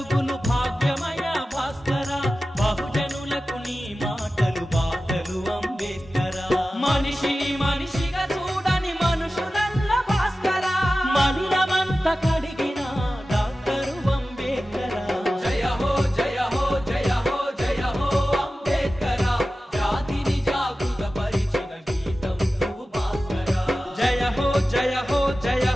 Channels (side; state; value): both; normal; correlation 0.95